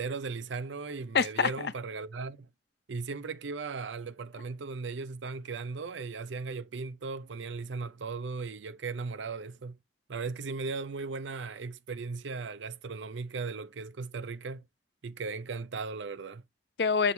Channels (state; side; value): normal; both; correlation 0.02